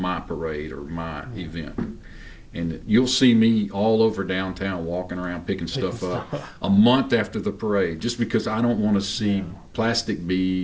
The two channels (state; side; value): identical; both; correlation 1.00